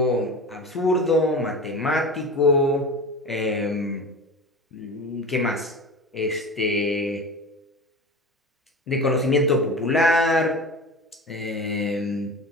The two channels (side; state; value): both; normal; correlation 0.31